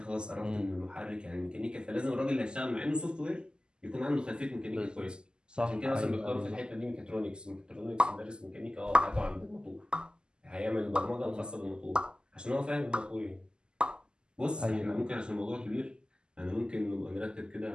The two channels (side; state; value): left; late; 0.047 ms